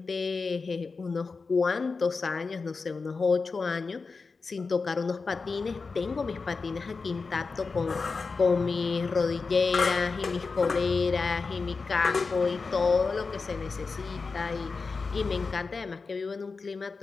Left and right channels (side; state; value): right; quieter; 4.4 dB